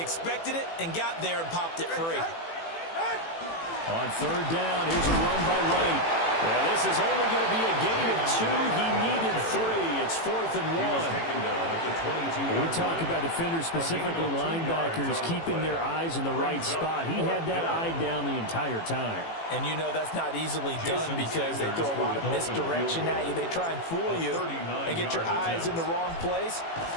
it and got there and popped it free. On third down, here's a run by Wright. Yeah, this is only going to be a gain of 2. He needed 3. It's 4th and 1. We talk about defenders, specifically linebackers, keeping their eyes in the right spot. He had that eye down the entire time. And you know that's not easily done because they throw a lot of misdirection at you. They try and fool you and get your eyes in the wrong place.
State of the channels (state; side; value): late; right; 18 ms